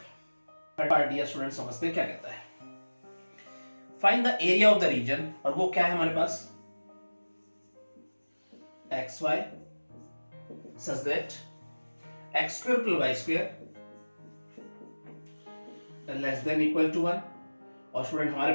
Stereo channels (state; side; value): inverted; both; correlation -1.00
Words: डियर स्टूडेंट समझते हैं क्या कहता है, find the area of the region, और वो क्या है हमारे पास xy such that x square plus y square less than equal to 1, और स्टूडेंट हमारे